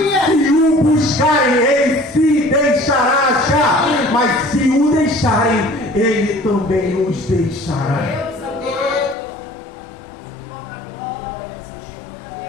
Se o buscarem, Ele se deixará achar. Mas se o deixarem, Ele também os deixará.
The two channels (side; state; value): right; drops out; at 9.2 s